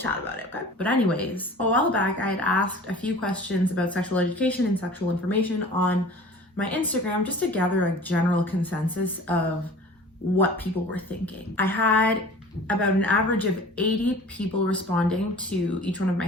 about it, okay? But anyways, a while back, I had asked a few questions about sexual education and sexual information on my Instagram just to gather a general consensus of what people were thinking. I had about an average of 80 people responding to each one of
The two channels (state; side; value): normal; both; correlation 0.43